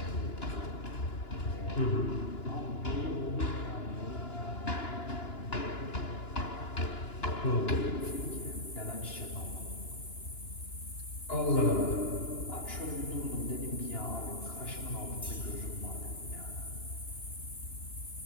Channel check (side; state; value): right; late; 2.9 ms